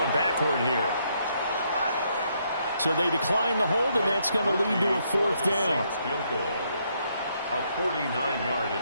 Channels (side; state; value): both; inverted; correlation -0.74